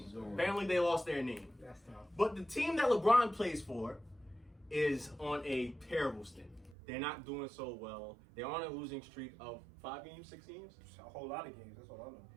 So- Apparently, they lost their name. That's tough. But the team that LeBron plays for is on a terrible stint. They're not doing so well. They're on a losing streak of 5 games, 6 games. A whole lot of games. That's all I know.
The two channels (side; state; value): left; drops out; at 6.8 s